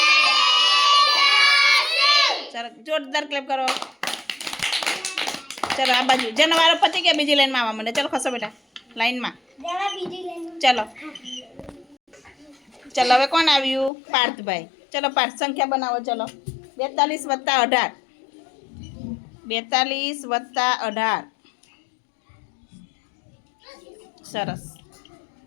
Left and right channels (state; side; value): drops out; right; at 13.9 s